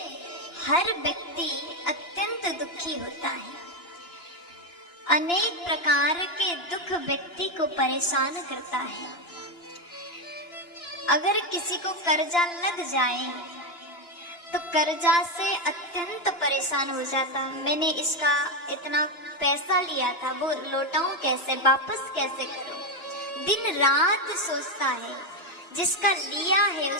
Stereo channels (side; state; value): right; late; 2.9 ms